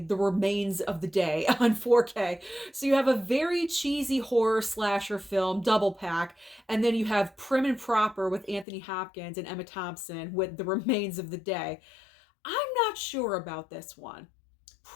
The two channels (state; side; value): drops out; right; at 8.7 s